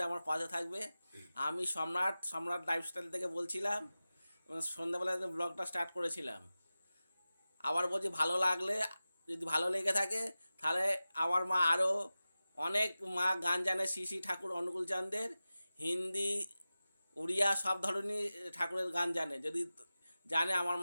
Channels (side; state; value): both; inverted; correlation -0.95